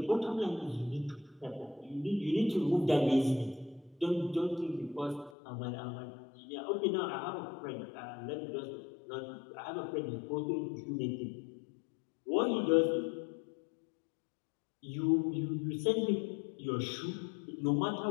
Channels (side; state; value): right; drops out; at 5.3 s